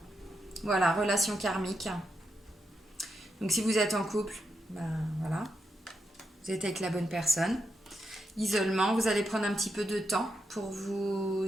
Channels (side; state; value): both; normal; correlation 0.85